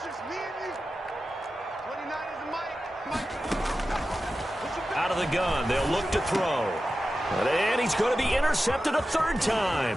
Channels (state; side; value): normal; both; correlation 0.93